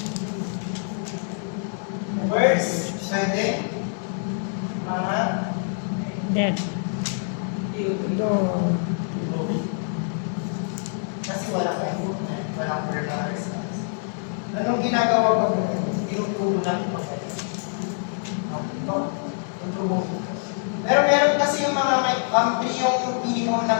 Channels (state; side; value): silent; right; digital silence